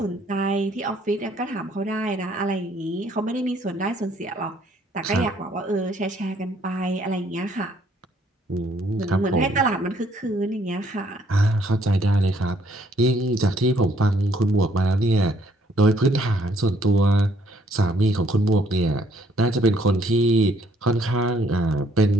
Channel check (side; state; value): both; normal; correlation 0.65